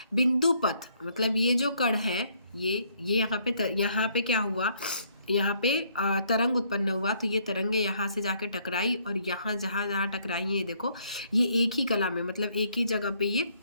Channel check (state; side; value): inverted; both; correlation -0.67